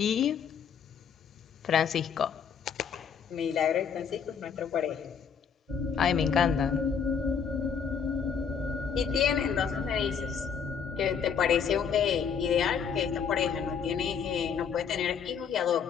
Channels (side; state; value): right; quieter; 6.9 dB